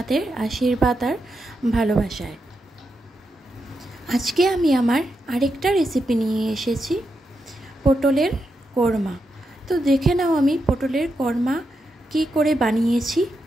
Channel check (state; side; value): normal; both; correlation 0.85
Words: আশীর্বাদ আর ভালোবাসায়। আজকে আমি আমার আরেকটা রেসিপি নিয়ে এসেছি, পটলের কোরমা। তো দেখে নাও আমি পটলের কোরমা কি করে বানিয়েছি।